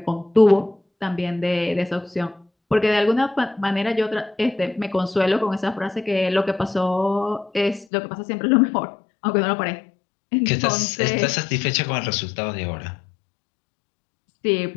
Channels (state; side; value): drops out; right; at 7.9 s